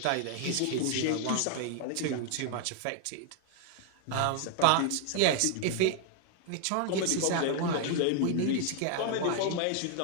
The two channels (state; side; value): different; both; correlation 0.00